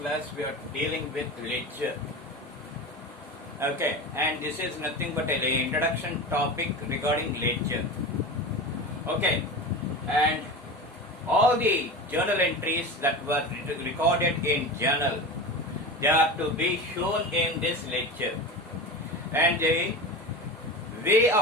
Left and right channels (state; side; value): normal; both; correlation 0.28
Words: we are dealing with ledger. Okay, and this is nothing but an introduction topic regarding ledger. Okay, and all the journal entries that were recorded in journal, they are to be shown in this ledger. And the way